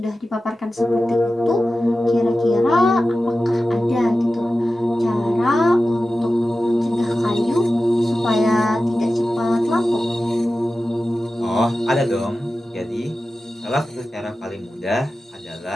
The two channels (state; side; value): normal; both; correlation 0.94